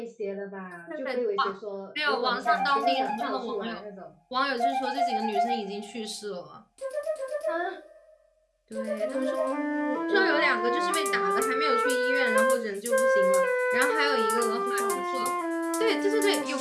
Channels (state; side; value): identical; both; correlation 1.00